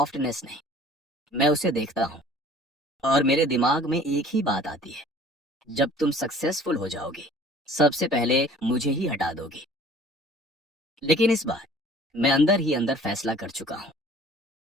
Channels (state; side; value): normal; both; correlation 0.50